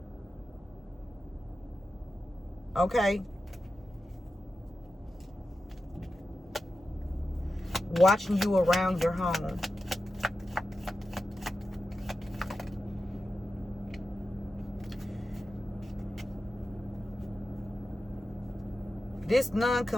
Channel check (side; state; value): both; normal; correlation 0.92